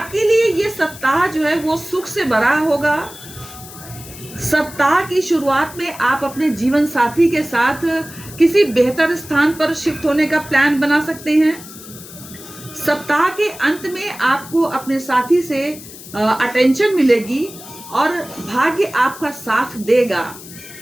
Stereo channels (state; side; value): noise; left; hiss, 16 dB below the sound